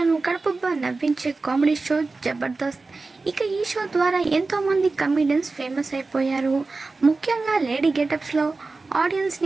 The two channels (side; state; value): left; quieter; 3.7 dB